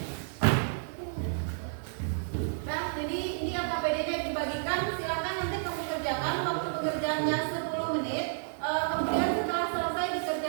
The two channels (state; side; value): silent; left; digital silence